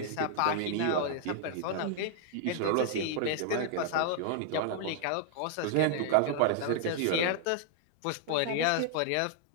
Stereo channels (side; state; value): both; different; correlation -0.01